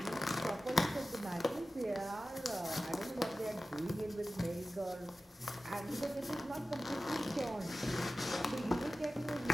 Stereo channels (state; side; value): normal; both; correlation 0.95